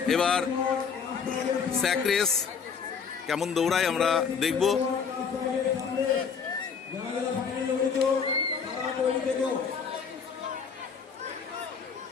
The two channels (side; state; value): right; quieter; 6.3 dB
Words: এবার স্যাক রেস কেমন দৌড়ায় আমরা দেখব।